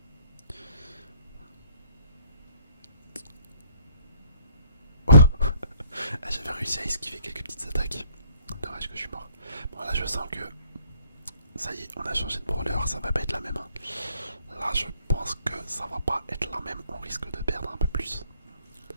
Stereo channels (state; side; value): inverted; both; correlation -0.63